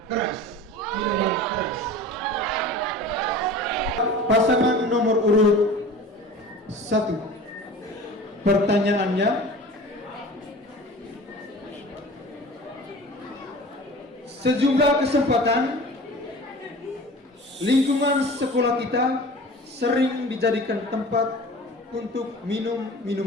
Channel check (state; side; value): normal; both; correlation 0.40